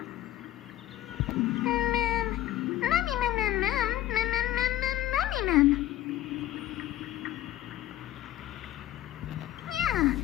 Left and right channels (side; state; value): right; quieter; 13.8 dB